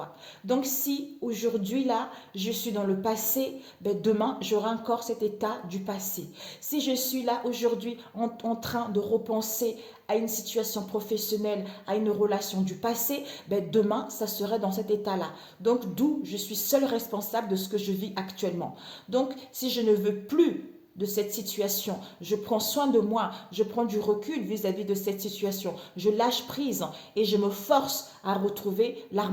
Donc, si aujourd'hui, là, je suis dans le passé, demain, j'aurai encore cet état du passé. Si je suis là aujourd'hui en train de repenser à une situation professionnelle, à une relation du passé, demain, ça serait dans cet état-là. Donc, d'où je suis seule responsable de ce que je vis actuellement. Donc, si je ne veux plus de cette situation, je prends soin de moi, je prends du recul vis-à-vis de cette situation, je lâche prise et je me force à retrouver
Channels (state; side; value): identical; both; correlation 1.00